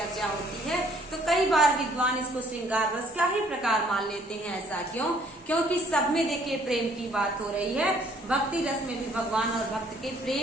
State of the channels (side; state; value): both; normal; correlation 0.62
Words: होती है। तो कई बार विद्वान इसको श्रृंगार रस का ही प्रकार मान लेते हैं। ऐसा क्यों? क्योंकि सब में देखिए प्रेम की बात हो रही है। भक्ति रस में भी भगवान और भक्त के